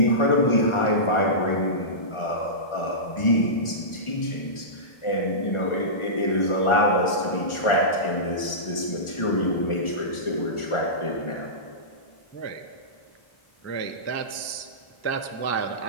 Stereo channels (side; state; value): right; late; 1.4 ms